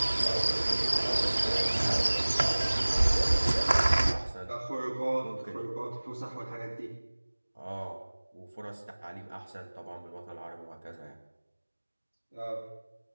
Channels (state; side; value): inverted; both; correlation -1.00